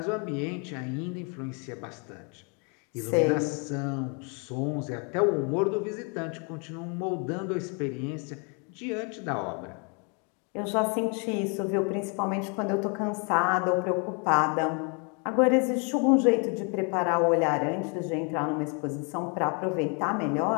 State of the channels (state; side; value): quieter; right; 36.0 dB